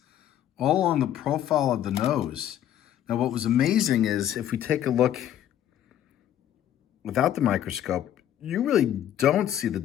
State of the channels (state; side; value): quieter; right; 11.1 dB